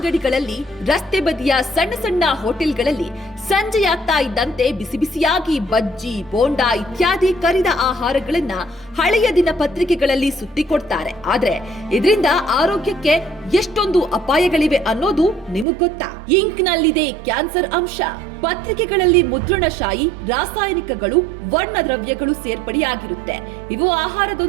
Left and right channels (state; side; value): drops out; left; at 15.7 s